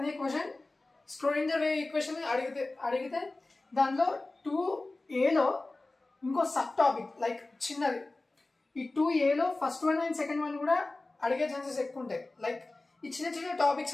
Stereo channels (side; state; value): right; quieter; 3.1 dB